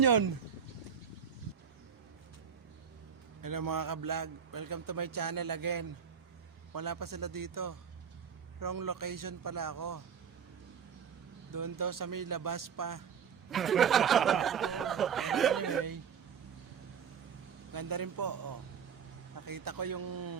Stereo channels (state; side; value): quieter; left; 7.2 dB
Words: Hello mga ka-vlog, welcome to my channel again. Wala pa sila dito. Wrong location pala ako. Doon daw sa may labas pa. Anyway, ganda rin po. Oh. Nakita ko yung